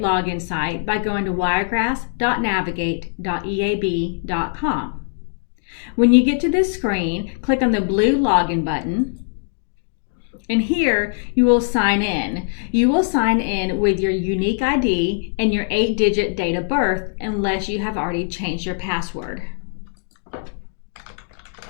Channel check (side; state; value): right; silent; digital silence